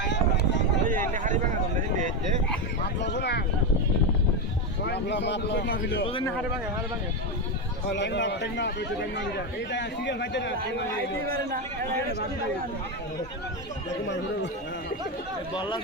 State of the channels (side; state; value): both; normal; correlation 0.11